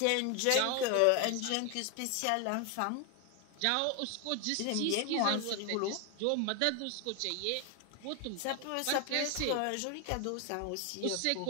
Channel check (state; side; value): different; both; correlation 0.01